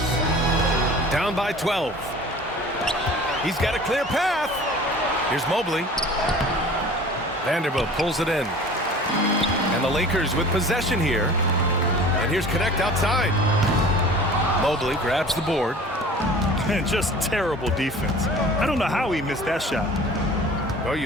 Down by 12. He's got a clear path. Here's Mobley. Vanderbilt pulls it in. And the Lakers with possession here. And here's Connect outside. Mobley grabs the board. And just terrible defense. I don't know how he missed that shot. Well,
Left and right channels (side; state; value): both; normal; correlation 0.44